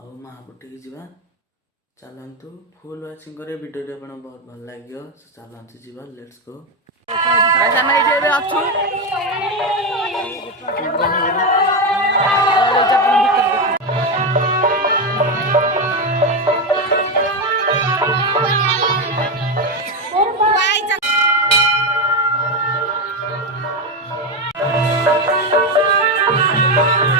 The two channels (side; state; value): both; normal; correlation 0.11